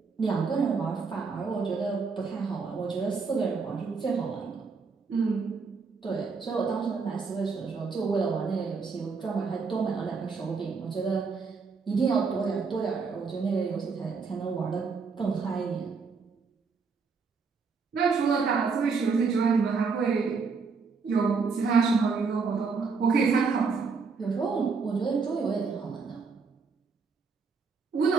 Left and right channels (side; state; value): left; quieter; 5.0 dB